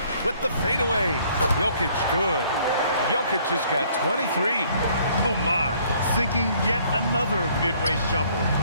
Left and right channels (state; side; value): inverted; both; correlation -0.61